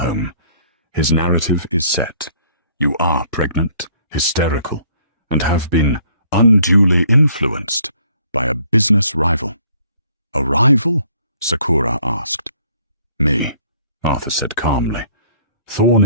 His narrative is set. You are pregnant, hysterical, and have been unduly influenced by a business rival." "A rival?" Sakura asked. "Me," Arthur said calmly. "Thorne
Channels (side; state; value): both; inverted; correlation -0.61